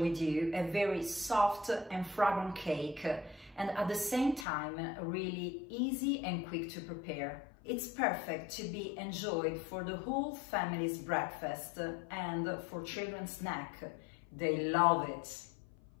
you a very soft and fragrant cake and at the same time really easy and quick to prepare. It's perfect to be enjoyed for the whole family's breakfast and for children's snack. They love it.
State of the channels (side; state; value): right; drops out; at 4.5 s